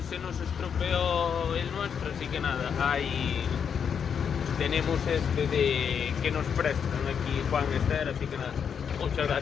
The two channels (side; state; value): right; quieter; 7.2 dB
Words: se nos estropeó el nuestro, así que nada, ahí tenemos este de que nos prestan aquí Juan Esther, así que nada, muchas